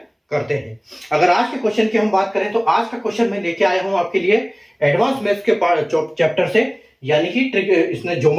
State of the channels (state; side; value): identical; both; correlation 1.00